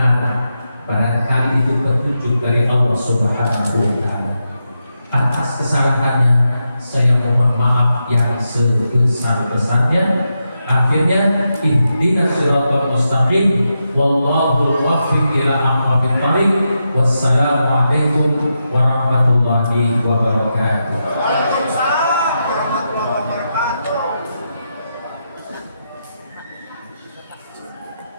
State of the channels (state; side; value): inverted; both; correlation -0.86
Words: barangkali itu petunjuk dari Allah Subhanahu wa Ta'ala. Atas kesalahannya saya mohon maaf yang sebesar-besarnya. Akhirnya ihdinas siratal mustaqim, wallahul muwaffiq ila aqwamit thariq. Wassalamu alaikum warahmatullahi wabarakatuh.